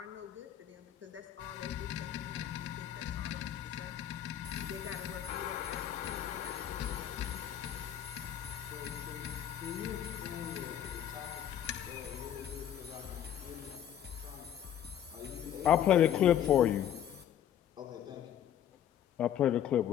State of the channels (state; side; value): quieter; right; 10.4 dB